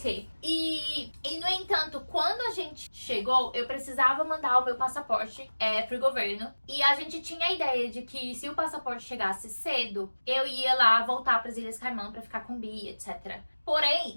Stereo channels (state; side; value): inverted; both; correlation -1.00